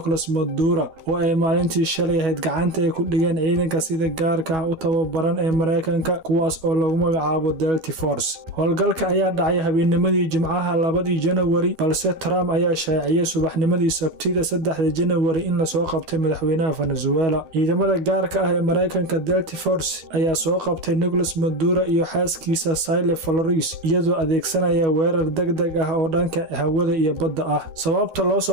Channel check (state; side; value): late; left; 12 ms